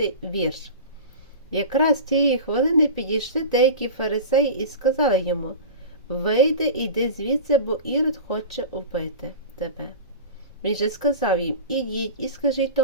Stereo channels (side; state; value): both; inverted; correlation -0.31